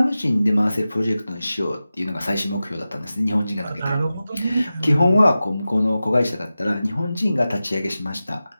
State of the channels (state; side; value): inverted; both; correlation -0.94